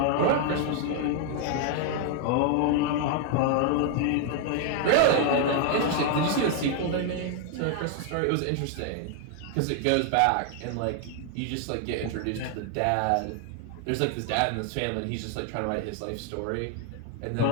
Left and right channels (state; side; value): different; both; correlation 0.00